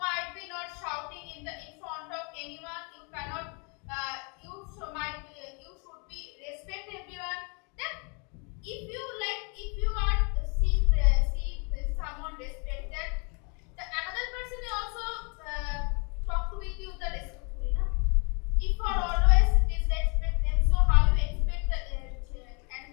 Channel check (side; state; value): right; quieter; 34.4 dB